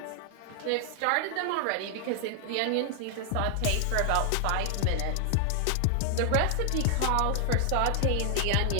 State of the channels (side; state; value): both; different; correlation 0.00